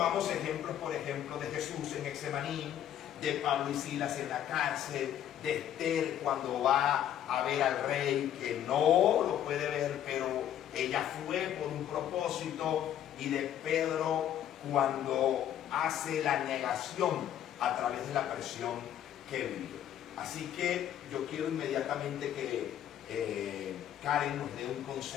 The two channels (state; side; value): quieter; right; 10.7 dB